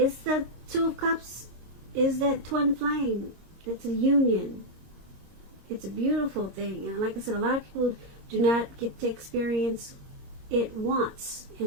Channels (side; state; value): left; late; 26 ms